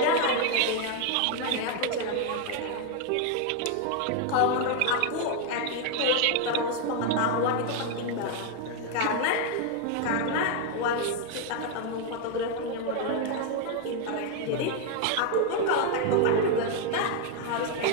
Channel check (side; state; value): both; different; correlation 0.01